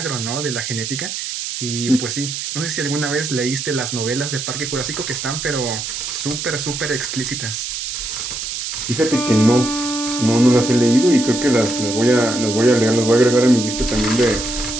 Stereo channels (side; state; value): right; noise; hiss, 5 dB below the sound